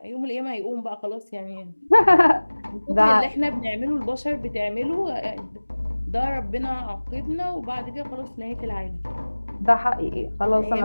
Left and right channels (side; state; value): both; inverted; correlation -1.00